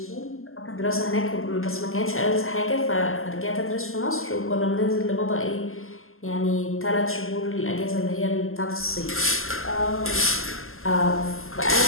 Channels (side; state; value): right; late; 0.61 ms